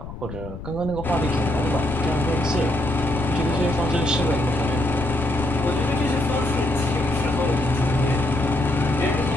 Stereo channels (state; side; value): noise; left; rumble, 11 dB below the sound